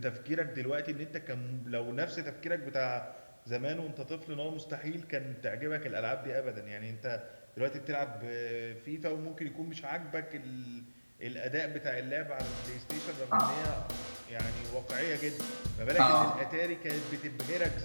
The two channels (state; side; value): inverted; both; correlation -1.00